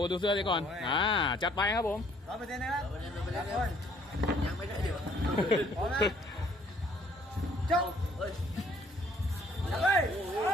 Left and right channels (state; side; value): normal; both; correlation 0.62